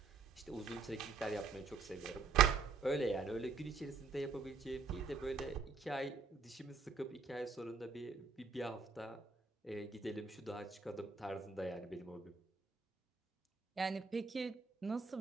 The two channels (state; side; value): quieter; left; 4.9 dB